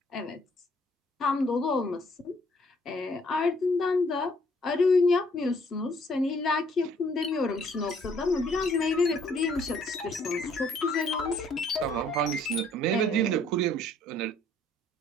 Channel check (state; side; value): normal; both; correlation 0.63